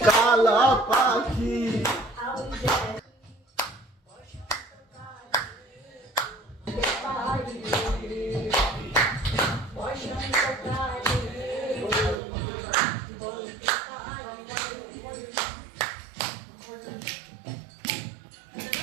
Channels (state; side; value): drops out; left; at 12.2 s